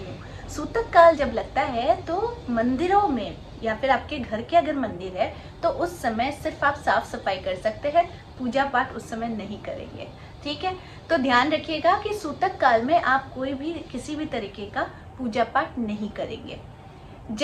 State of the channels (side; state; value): both; identical; correlation 1.00